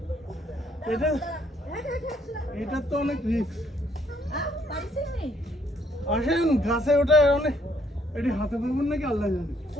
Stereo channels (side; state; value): both; normal; correlation 0.68